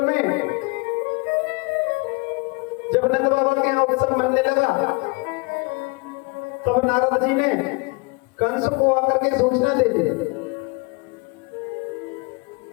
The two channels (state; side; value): quieter; right; 29.4 dB